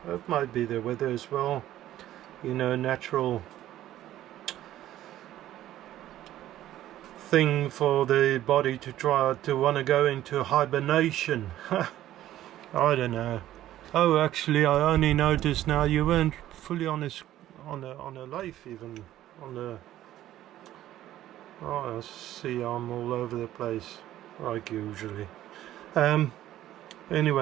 it might be the weather as well, you know, natural thing for the body to try to want to go into hibernation. I don't know. Oh, actually, I only noticed now you weren't fully on a lathe, even on the. Oh, I see, I'm all over the place like usually.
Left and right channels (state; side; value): quieter; left; 13.4 dB